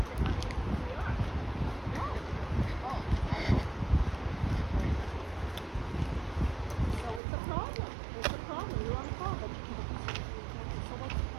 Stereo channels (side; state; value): left; drops out; at 7.2 s